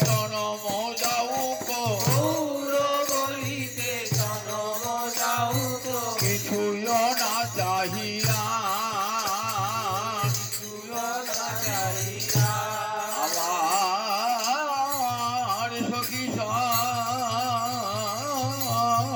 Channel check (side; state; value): both; identical; correlation 1.00